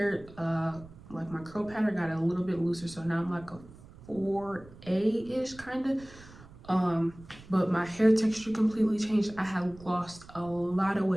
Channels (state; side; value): noise; right; rumble, 20 dB below the sound